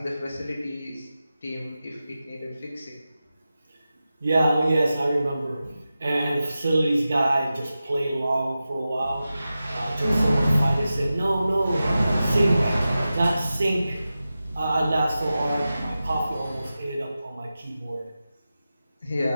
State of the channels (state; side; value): inverted; both; correlation -0.93